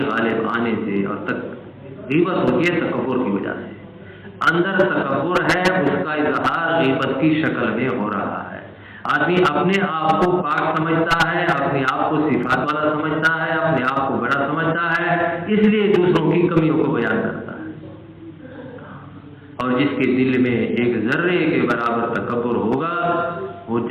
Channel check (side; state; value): both; identical; correlation 1.00